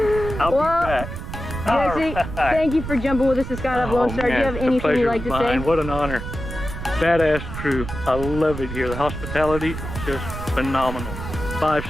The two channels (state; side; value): noise; right; rumble, 8 dB below the sound